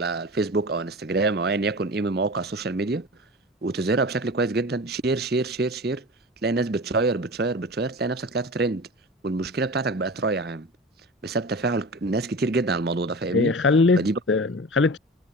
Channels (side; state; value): both; normal; correlation 0.33